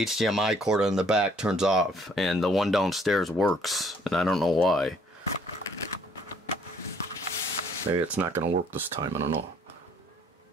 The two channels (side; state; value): both; normal; correlation 0.62